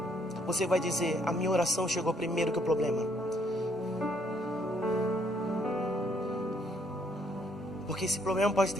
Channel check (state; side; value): normal; both; correlation 0.69